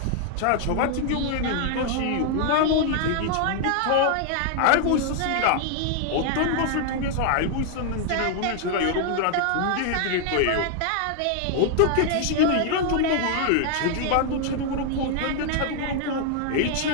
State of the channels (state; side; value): different; both; correlation 0.00